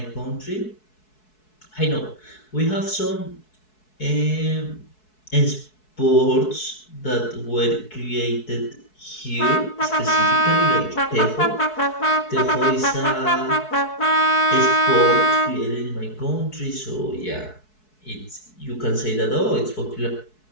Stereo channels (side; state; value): right; late; 4.7 ms